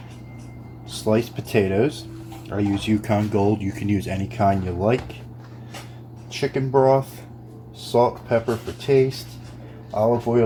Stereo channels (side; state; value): both; identical; correlation 1.00